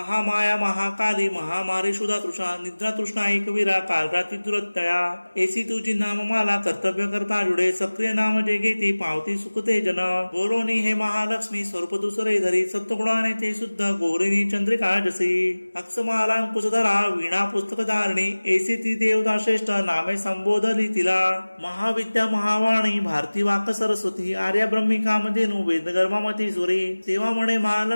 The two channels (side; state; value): both; inverted; correlation -1.00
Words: महाकाली महामारी शुदा तृषा निद्रा तृष्णा एकवीरा कालराती दुरत्तया एसी तुझी नाम मला कर्तव्य करता जुडे सक्रिय नाम जे घेती पावती सुखते जन बोलोनी हे महालक्ष्मी स्वरूप दुसरे धरी सत्वगुणाने ते शुद्ध गोरिणी चंद्रिका जसी अक्षमाला अंकुशधरा वीणा पुस्तक धारणी एसी ती देवता श्रेष्ठ नामे संबोधली तिला महाविद्या महावाणी भारती वाक सरस्वती आर्या ब्रह्मी कामधेनु वेदगर्भामती सुरे तेव्हा म्हणे